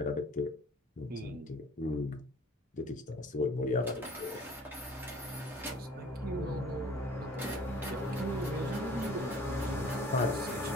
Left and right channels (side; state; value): both; normal; correlation 0.51